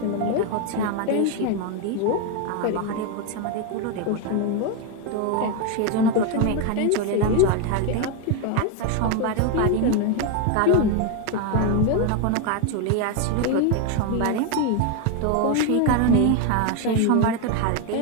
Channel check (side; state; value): both; different; correlation 0.01